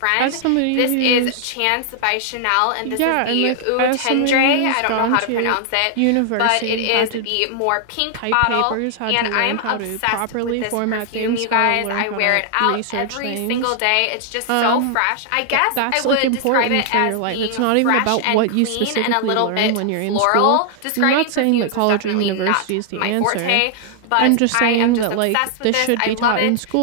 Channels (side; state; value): both; different; correlation 0.00